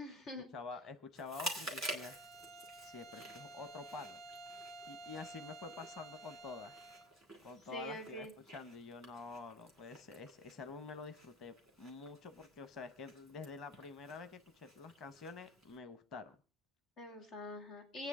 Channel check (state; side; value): normal; both; correlation 0.35